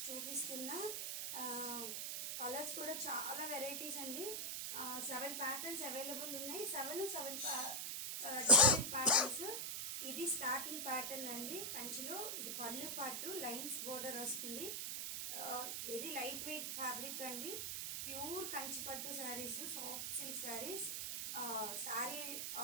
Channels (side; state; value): right; noise; hiss, 2 dB below the sound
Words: చూపిస్తున్నా. కలర్స్ కూడా చాలా వెరైటీస్ అండి. 7 ప్యాటర్న్స్ అవైలబుల్ ఉన్నాయి. 7 డిఫరెంట్ ప్యాటర్న్స్. ఇది స్టార్టింగ్ ప్యాటర్న్ అండి కంచిలో. ఇది పళ్ళు పాటు లైన్స్ బోర్డర్ వస్తుంది. వెరీ లైట్ వెయిట్ ఫ్యాబ్రిక్ అండి. ప్యూర్ కంచి పట్టు saris, soft silk saris. Sari